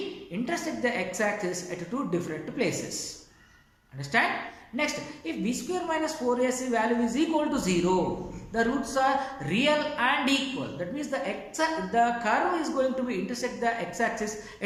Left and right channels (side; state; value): both; identical; correlation 1.00